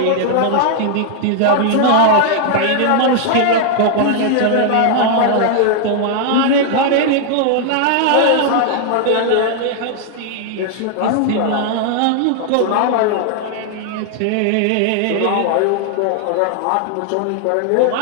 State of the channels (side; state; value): both; different; correlation 0.00